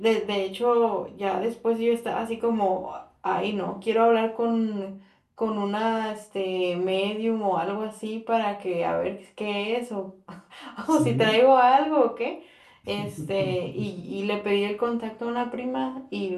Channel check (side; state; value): both; identical; correlation 1.00